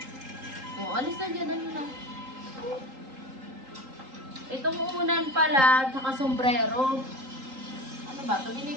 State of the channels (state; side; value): late; left; 3.8 ms